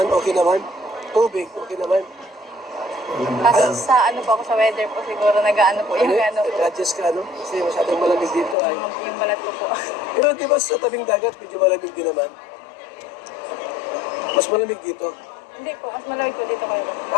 okay naman. Tubig, okay naman. Kasi sa ano po ako sa weather po siguro nag-ano po yung ano po. Nag-adjust ka, no? Kasi masyadong malamig dito ay. Yung balat ko po. Pero di ba sa tabing dagat, medyo malamig din naman? Mas malamig dito. Hindi po, mas malamig po dito kayo.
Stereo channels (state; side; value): drops out; right; at 8.6 s